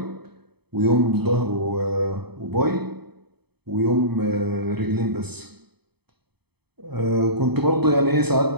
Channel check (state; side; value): late; left; 0.98 ms